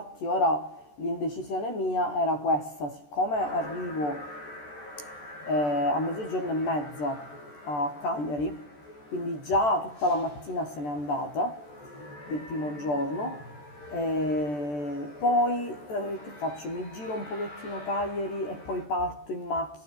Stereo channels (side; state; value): right; late; 14 ms